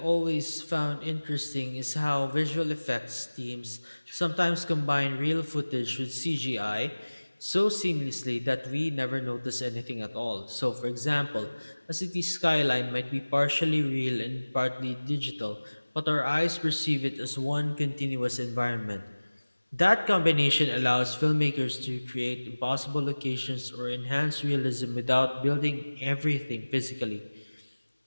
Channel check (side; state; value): both; inverted; correlation -1.00